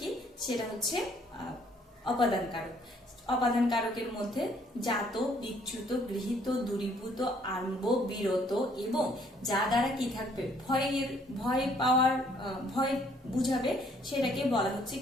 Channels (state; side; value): normal; both; correlation 0.63